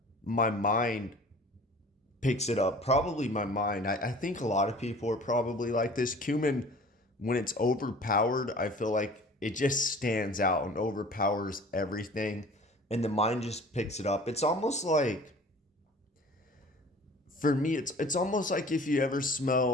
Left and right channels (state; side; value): normal; both; correlation 0.46